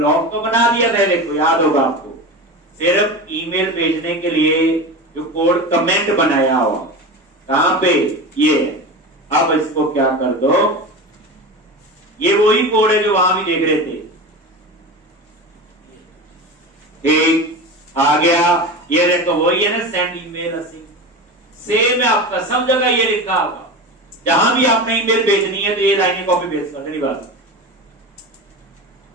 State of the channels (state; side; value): normal; both; correlation 0.27